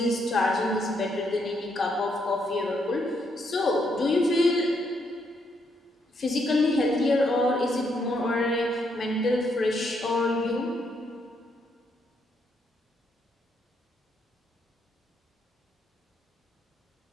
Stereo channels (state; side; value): normal; both; correlation 0.75